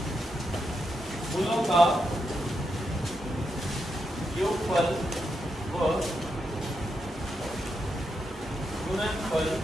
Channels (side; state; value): both; normal; correlation 0.84